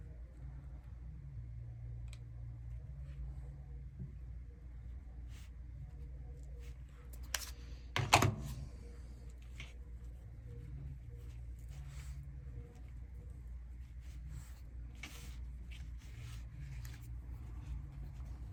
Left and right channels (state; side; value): identical; both; correlation 1.00